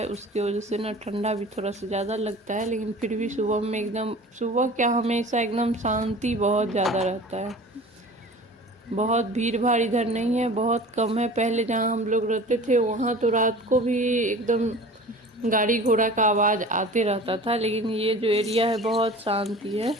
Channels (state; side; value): normal; both; correlation 0.41